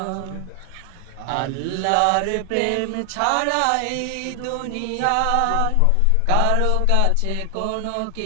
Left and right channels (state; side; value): different; both; correlation 0.00